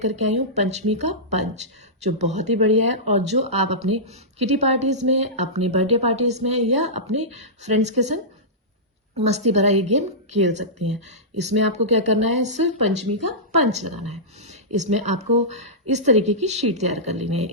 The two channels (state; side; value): normal; both; correlation -0.16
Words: के आई हूँ पंचमी का पंच, जो बहुत ही बढ़िया है और जो आप अपनी किटी पार्टीज में, अपनी बर्थडे पार्टीज में या अपने फ्रेंड्स के संग मस्ती भरा ये गेम खेल सकती हैं। इसमें आपको क्या करना है, सिर्फ पंचमी का पंच लगाना है। इसमें आपको इस तरीके की शीट तैयार कर लेनी है।